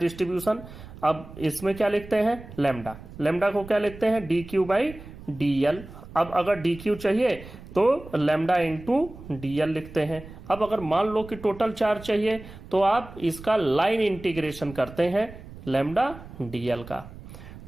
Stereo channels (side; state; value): right; noise; rumble, 16 dB below the sound